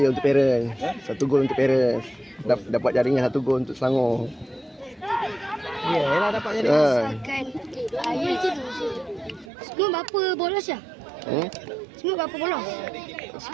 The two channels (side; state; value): left; drops out; at 9.5 s